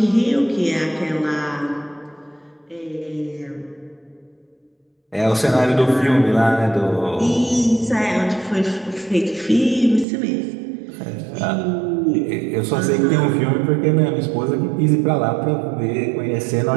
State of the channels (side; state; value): left; drops out; at 10.1 s